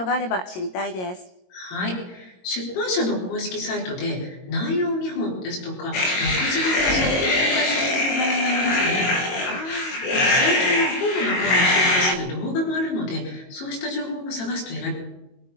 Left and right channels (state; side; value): late; right; 22 ms